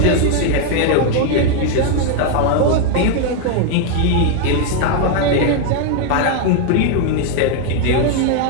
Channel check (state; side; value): different; both; correlation 0.01